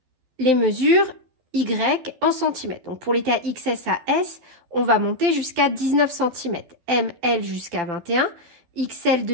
les mesures Y en centimètres. Donc pour les tailles XS à S, on va monter jusqu'à 19 cm, M, L jusqu'à 21, XL,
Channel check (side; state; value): left; late; 12 ms